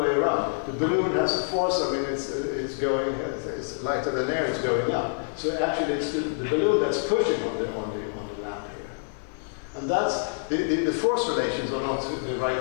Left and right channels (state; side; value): silent; right; 60 dB below the other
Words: around. The balloon has a force. I mean, it's lighter than air. It's going up. So actually, it's the balloon that's pushing on the lamp here. And And that's, the force relations are not the